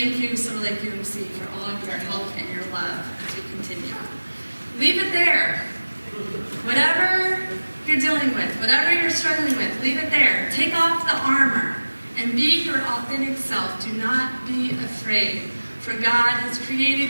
you, Summer Lake UMC, for all of your help and your love as we continue. Leave it there. Whatever you're you're dealing with, whatever you're struggling with, leave it there. Take off the armor and be your authentic self. Do not be afraid, for God has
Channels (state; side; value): inverted; both; correlation -1.00